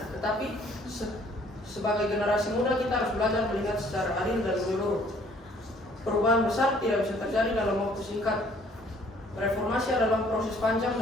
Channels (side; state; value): both; normal; correlation 0.60